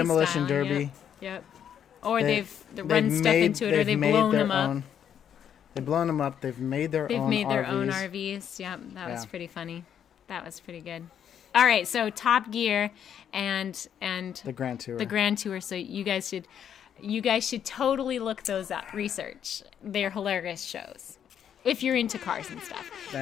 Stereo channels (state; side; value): quieter; right; 8.9 dB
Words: style, derby. Yep. Or They- they've run stuff into it, or they've made blown their them up. own- They've blown them up. They've made their They've own made their RVs. own RVs. Yep, that was Yeah. pretty funny. That was pretty good. All right, so Top Gear and The Grand Tour. the Grand Tour. So you guys should totally look those up. Research. They're hilarious shows if you're into cars and stuff.